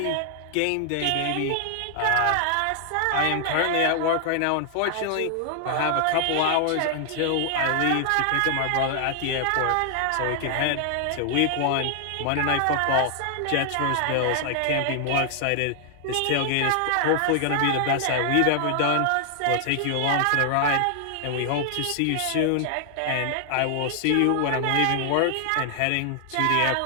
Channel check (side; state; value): both; different; correlation 0.00